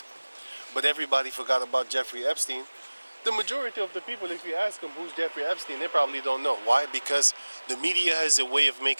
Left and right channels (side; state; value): both; inverted; correlation -1.00